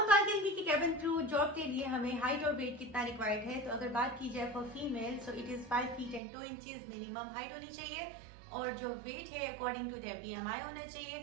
बात करेंगे कि कैबिन क्रू जॉब के लिए हमें हाइट और वेट कितना रिक्वायर्ड है. तो अगर बात की जाए for female so it is 5 feet and 2 inches minimum height होनी चाहिए और जो वेट है अकॉर्डिंग टू देयर बीएमआई होना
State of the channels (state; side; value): drops out; left; at 6.2 s